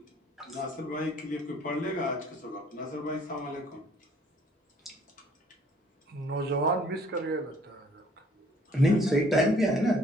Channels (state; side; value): normal; both; correlation 0.58